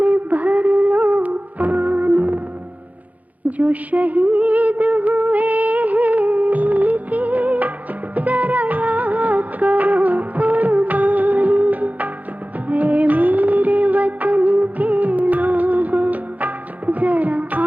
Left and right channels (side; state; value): left; late; 0.075 ms